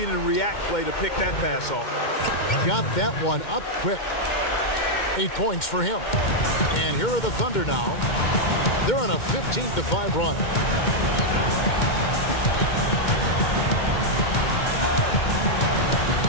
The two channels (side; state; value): right; late; 2.1 ms